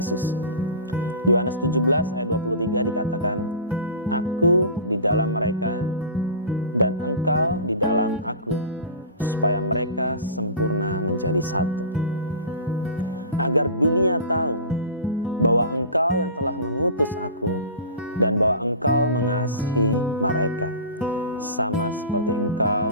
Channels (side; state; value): both; inverted; correlation -0.35